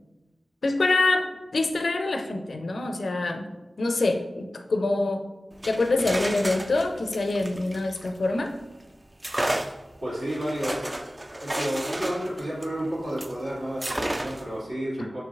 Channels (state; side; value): normal; both; correlation 0.95